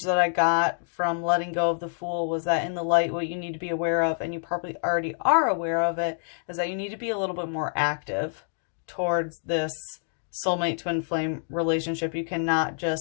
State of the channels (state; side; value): silent; right; digital silence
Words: that I got from letting go of the Fool was that in the light, what you need to be aware of, and you probably already are aware of it, is that you need to be a little bit more active towards this soulmate twin flame relationship. You cannot